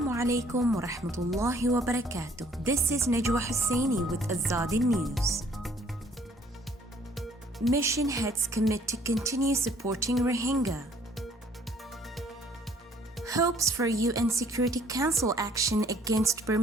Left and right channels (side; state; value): both; normal; correlation 0.60